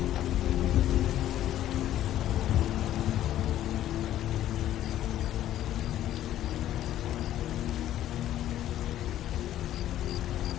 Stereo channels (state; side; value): quieter; right; 12.5 dB